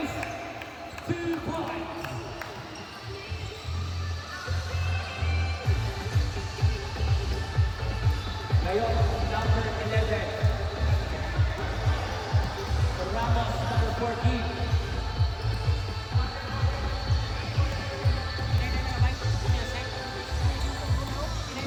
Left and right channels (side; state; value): both; identical; correlation 1.00